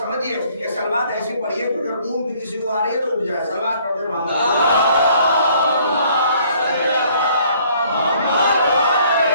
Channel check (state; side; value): inverted; both; correlation -0.61